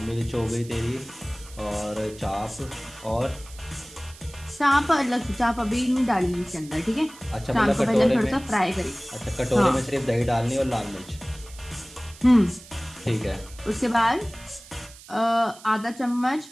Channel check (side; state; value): right; noise; hiss, 20 dB below the sound